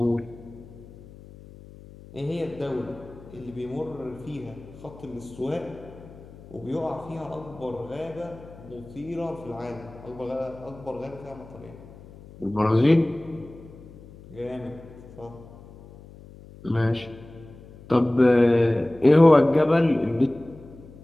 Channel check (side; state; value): left; noise; hum, 19 dB below the sound